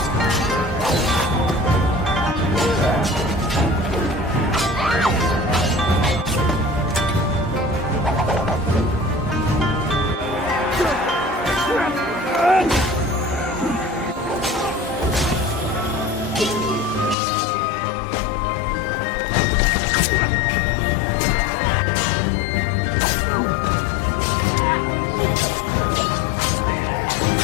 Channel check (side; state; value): right; drops out; at 17.2 s